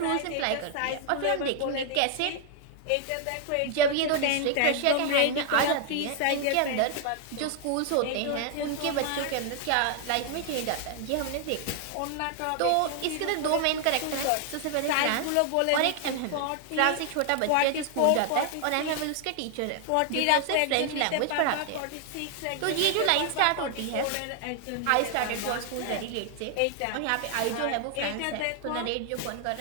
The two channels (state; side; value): different; both; correlation 0.00